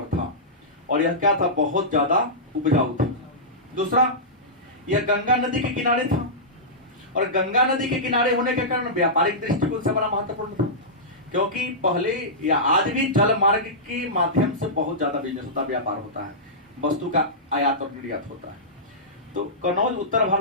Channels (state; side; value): normal; both; correlation -0.15